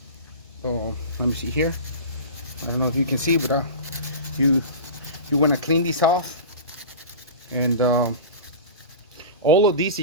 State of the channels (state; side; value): inverted; both; correlation -0.32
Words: Let me see here. I don't know if you can see, but you want to clean this off. And all of these